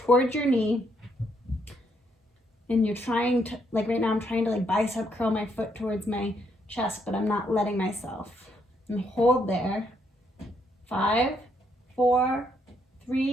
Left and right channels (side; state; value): both; normal; correlation 0.73